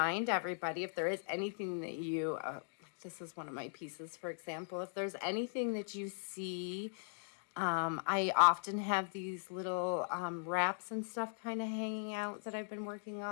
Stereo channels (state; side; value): silent; right; digital silence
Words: everybody if there is anything that you, this is one of my pieces, for example, if there's anything that you see, I often have these little wraps and stuff kind of hanging out that I've been working